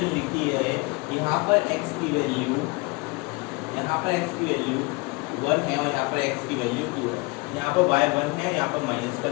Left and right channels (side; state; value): right; quieter; 27.1 dB